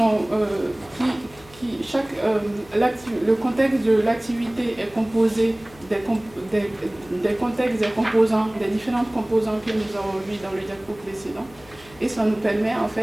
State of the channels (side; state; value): left; noise; hum, 24 dB below the sound